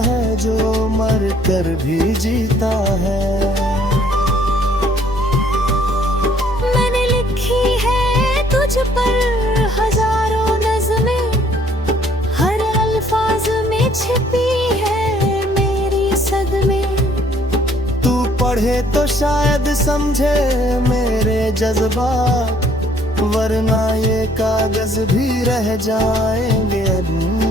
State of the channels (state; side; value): normal; both; correlation 0.62